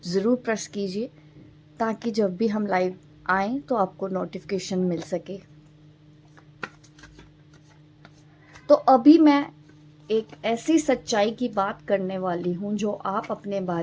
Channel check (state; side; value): identical; both; correlation 1.00